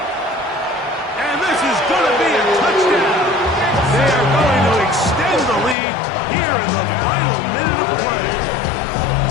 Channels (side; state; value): right; drops out; at 5.8 s